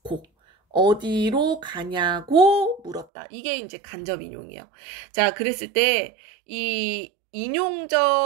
고. 어디로 가냐고 물었다. 이게 이제 간접 인용이에요. 자, 그랬을 때 이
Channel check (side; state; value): left; drops out; at 3.1 s